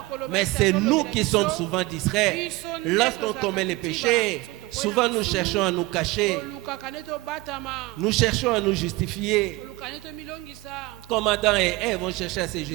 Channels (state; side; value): quieter; left; 20.7 dB